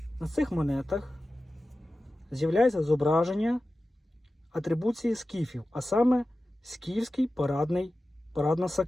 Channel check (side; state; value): both; normal; correlation 0.94